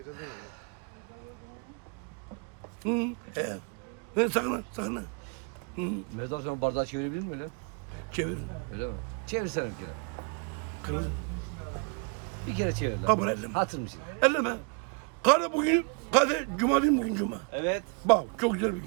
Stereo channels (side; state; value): left; quieter; 36.9 dB